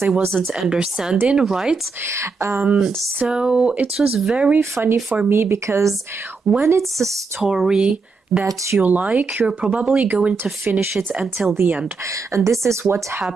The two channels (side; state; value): left; quieter; 4.3 dB